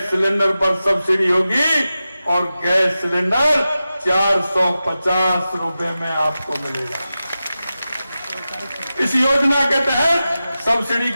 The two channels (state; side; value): inverted; both; correlation -0.93